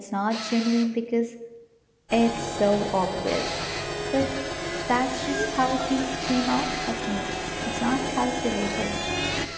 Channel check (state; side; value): identical; both; correlation 1.00